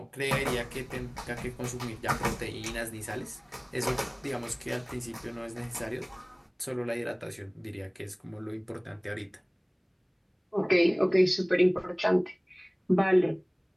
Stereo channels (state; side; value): identical; both; correlation 1.00